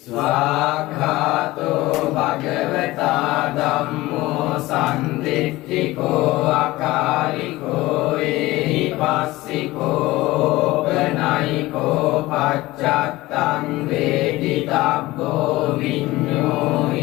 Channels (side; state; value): right; quieter; 18.8 dB